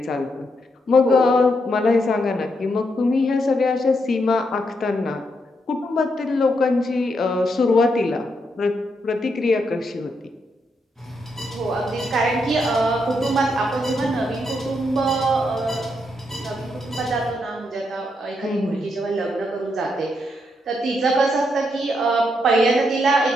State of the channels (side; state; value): both; normal; correlation 0.79